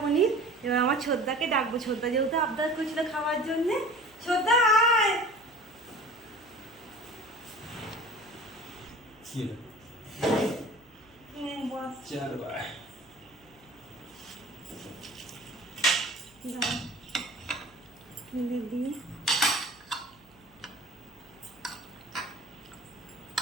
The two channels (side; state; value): right; noise; hum, 28 dB below the sound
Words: পনির। এবার আমার ছোদ্দাকে ডাকবো। ছোদ্দা যেহেতু আবদার করছিল খাওয়ার জন্য। ছোদ্দা আয়। দিয়ে